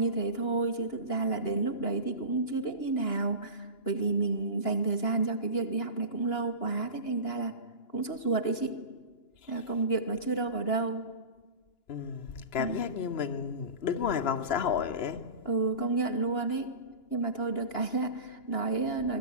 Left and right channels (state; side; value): late; right; 2.9 ms